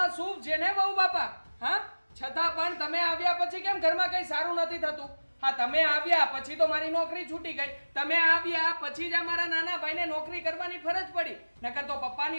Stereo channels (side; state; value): both; inverted; correlation -1.00